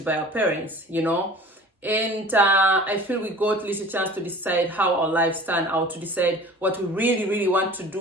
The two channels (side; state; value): both; normal; correlation 0.43